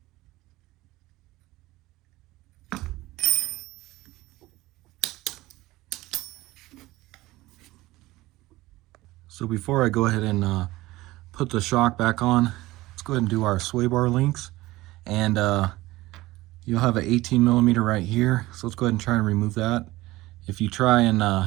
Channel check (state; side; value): quieter; left; 18.6 dB